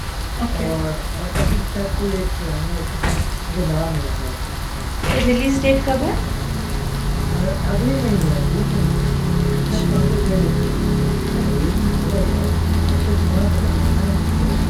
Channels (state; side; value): identical; both; correlation 1.00